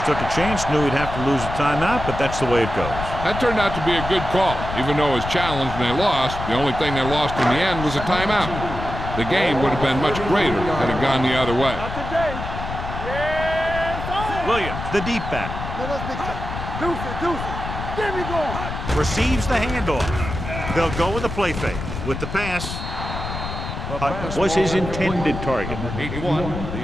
took a chance, knew he'd have to lose a timeout, but that's the way it goes. That turned out to be a good call. Even though it was challenged and they lost, the only thing they lost in the end was a timeout. The game would have been much greater had it gone the other way. Not today. Yes, sir. Williams, the deep back, Let us big time. Deuce it, deuce it. Get me going. receives the handoff. They'll go with the play fake. With the pass, Hutt was his intended target. 81,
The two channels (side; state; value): left; noise; rumble, 7 dB below the sound